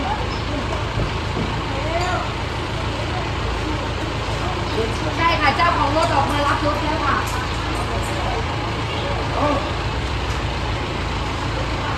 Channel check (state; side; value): identical; both; correlation 1.00